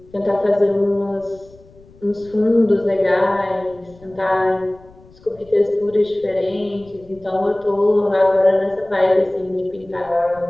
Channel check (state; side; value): noise; left; rumble, 25 dB below the sound